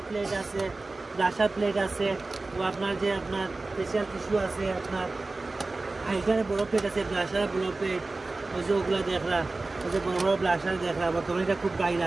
প্লেট আছে ব্লাশার প্লেট আছে ও আপনার যে আপনার ফেশিয়াল টিস্যু আছে আপনার হাইলাইটারে বড় প্লেট আছে ব্লাশারে বড় প্লেট ওই যে ওগুলা দেখরা ওই যে বড় বড় ব্লাশার দেখরা বর্তমানে এটা খুব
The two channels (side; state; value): left; quieter; 3.4 dB